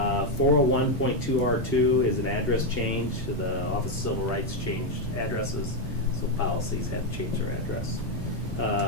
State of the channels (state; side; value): late; left; 2.3 ms